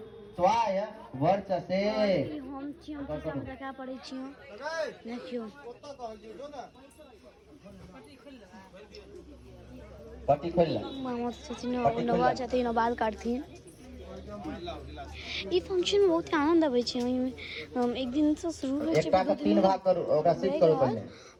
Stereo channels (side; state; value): both; identical; correlation 1.00